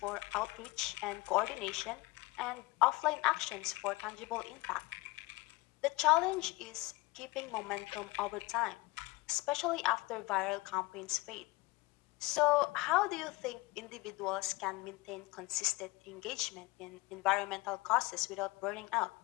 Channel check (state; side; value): quieter; right; 22.4 dB